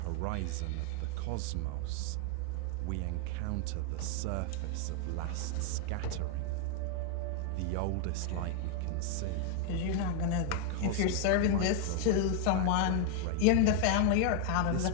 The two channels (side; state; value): both; different; correlation 0.00